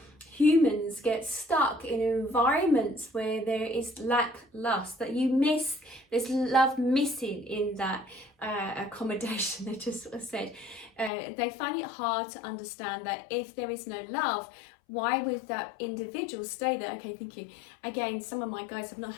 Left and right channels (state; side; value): drops out; right; at 11.1 s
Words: humans get stuck in environments where there is lust, that you miss, there's love missing in that accommodation. They just sort of said they find it hard to understand that if there is no love, why would that individual stay there? Okay, thank you. Again, some of my guys have not